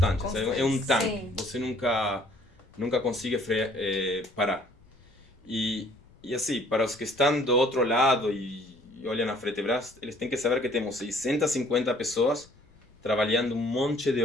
É um tanque. Sim. Você nunca consegue parar. E assim, para os que estão do outro lado e olham a Fretebras, eles têm que saber que temos 650 pessoas trabalhando um monte de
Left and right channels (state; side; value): noise; left; rumble, 28 dB below the sound